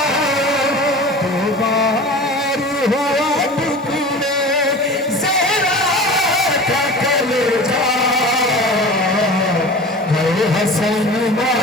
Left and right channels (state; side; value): normal; both; correlation 0.36